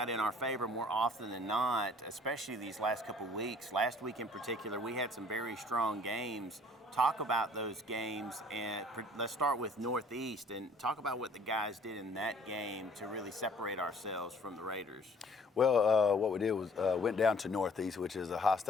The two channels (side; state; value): both; normal; correlation 0.55